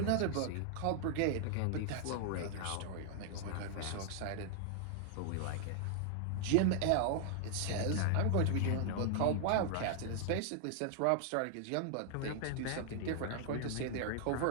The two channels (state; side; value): different; both; correlation 0.00